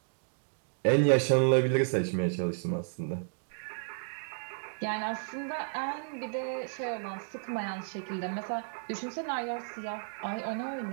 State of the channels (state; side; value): silent; left; digital silence